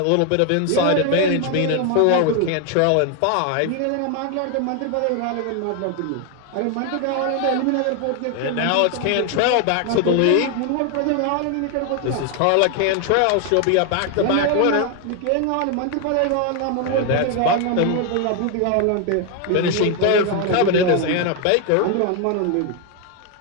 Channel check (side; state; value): both; different; correlation 0.01